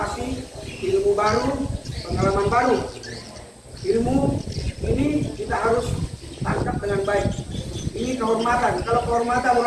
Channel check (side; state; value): both; identical; correlation 1.00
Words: ilmu baru, pengalaman baru. Ilmu ini kita harus tangkap dengan baik. Ini kehormatan. Kalau kehormatan